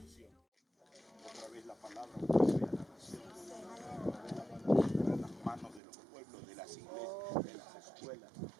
Otra vez la palabra vuelve a la nación. Otra vez la palabra en las manos de los pueblos, de las iglesias, de las escuelas,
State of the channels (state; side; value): drops out; left; at 5.8 s